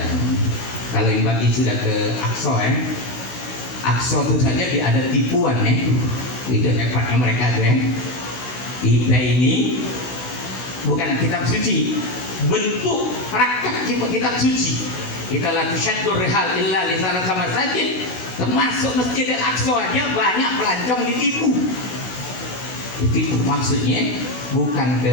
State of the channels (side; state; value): right; late; 16 ms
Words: Kalau yang bagi sudah ke Aqsa Aqsa itu saja ada tipuan itu hebatnya mereka kita ini bukan kitab suci, bentuk praktek kitab suci. Kita la tusyaddur rihal illa li salasati masajid, termasuk Masjid Al-Aqsa aja banyak pelancong ditipu. Maksudnya bukan